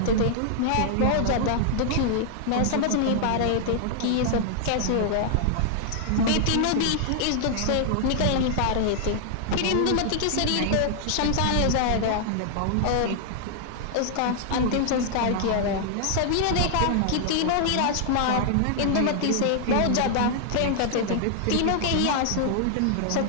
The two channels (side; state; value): both; different; correlation -0.01